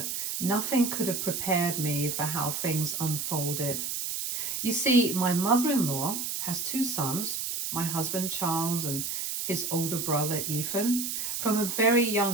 nothing could have prepared me for how things unfolded. You see, my mother-in-law has two sons, my husband Charles and his older brother Ethan. From a very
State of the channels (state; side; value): noise; right; hiss, 3 dB below the sound